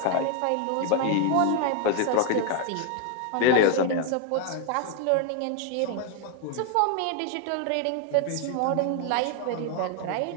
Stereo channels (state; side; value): different; both; correlation 0.00